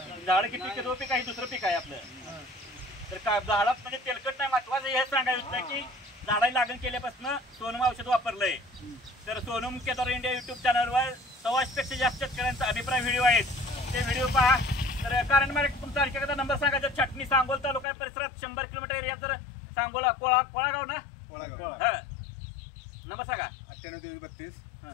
झाड किती पीक आहे? दुसरं पीक आहे आपलं. तर झाडात म्हणजे तेलकट नाही. महत्वाचं हे सांगायचं की झाडाला लागण केल्यापासून सोनम औषध वापरलंय. तर सोनम केदार इंडिया युट्यूब चॅनलवर 100पेक्षा जास्त शेतकऱ्यांचा अभिप्राय व्हिडिओ आहेत. ते व्हिडिओ पहा. तर कारण मला तुमचा आणखी एकदा नंबर सांगायचा. छाटणी सांगोल तालुका परिसरात 100 किलोमीटर एरिया. तर सांगोला कोळागाव ना? हा, नंबर सांगा. 9832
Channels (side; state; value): right; drops out; at 17.9 s